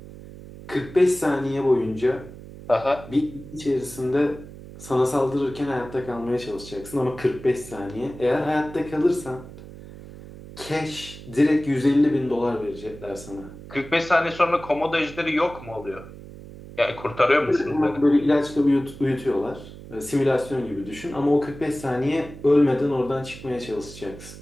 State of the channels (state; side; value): noise; right; hum, 15 dB below the sound